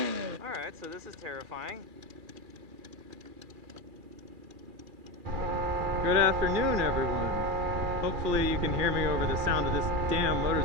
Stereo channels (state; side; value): late; left; 2.4 ms